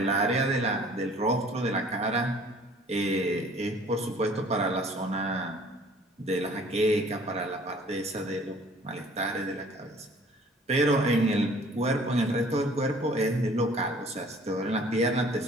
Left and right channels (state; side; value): normal; both; correlation 0.53